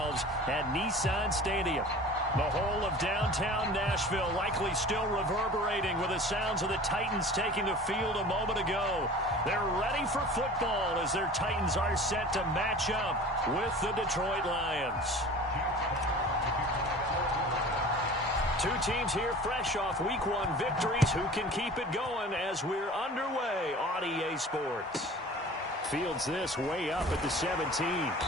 at Nissan Stadium. The whole of downtown Nashville likely still reverberating with the sounds of the Titans taking the field a moment ago. They're ready for football as their Titans are set to match up with the Detroit Lions. Two teams here fresh off Week 1 victories. Who can keep it going as we're underway on EA Sports? Fields this way up at the 17.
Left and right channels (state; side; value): normal; both; correlation 0.41